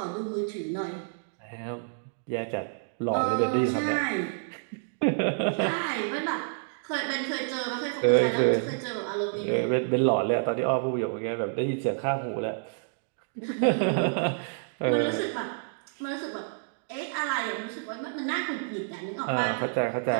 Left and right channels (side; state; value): left; silent; digital silence